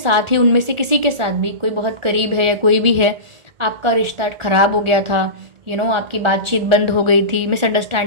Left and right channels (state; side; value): late; left; 1.4 ms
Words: ही, उनमें से किसी के साथ भी, कोई बहुत करीब है या कोई भी है, आपका रिश्ता ख़राब हो गया था, आपकी बातचीत बंद हो गई थी,